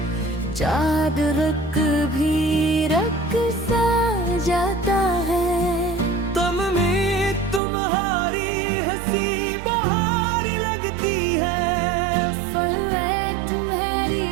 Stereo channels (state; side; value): drops out; left; at 7.6 s